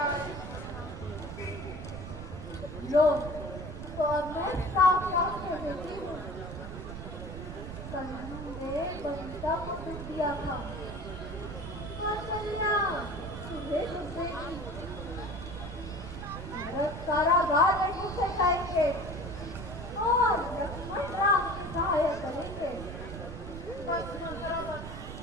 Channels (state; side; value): noise; right; rumble, 9 dB below the sound